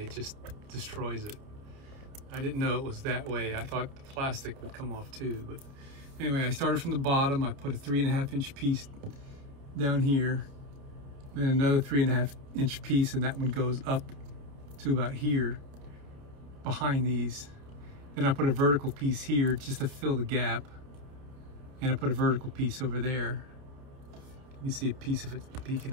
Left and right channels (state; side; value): late; left; 29 ms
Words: just destroys it. I didn't know it was that way. I thought the plastic would come off too, but anyway, I started from the bottom. I put a 3.5 inch piece down here, and another 3.5 inch piece, and that one goes up to about here behind these. Then I put a vertical piece here just to fill the gap, and I put a vertical piece over there. You can see a piece of it peeking